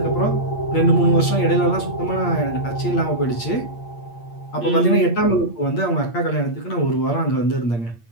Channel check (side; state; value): right; late; 8.6 ms